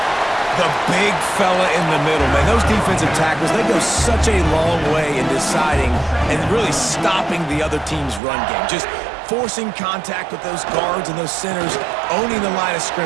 The big fella in the middle, man. Those defensive tackles, they go such a long way in deciding and really stopping the other team's run game. Just forcing contact with those guards and those centers, owning the line of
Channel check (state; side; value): drops out; left; at 8.2 s